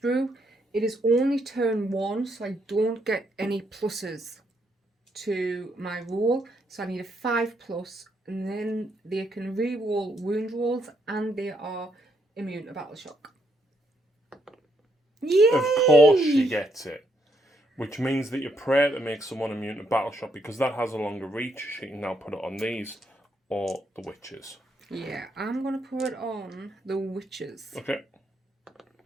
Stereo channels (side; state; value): both; normal; correlation 0.75